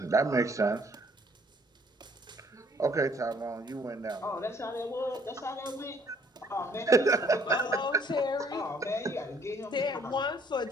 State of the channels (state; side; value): normal; both; correlation 0.63